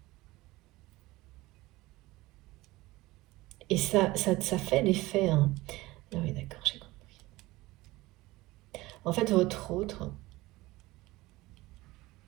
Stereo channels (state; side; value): quieter; left; 19.6 dB